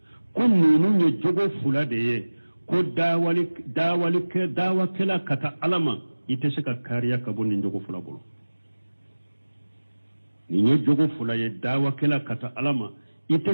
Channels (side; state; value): both; inverted; correlation -1.00